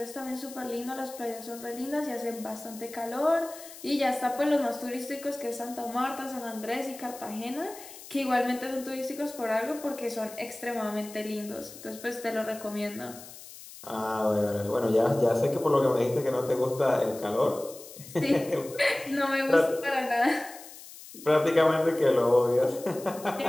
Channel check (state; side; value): noise; left; hiss, 16 dB below the sound